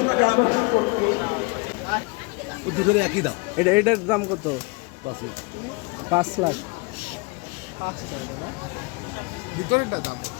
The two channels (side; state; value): right; quieter; 28.3 dB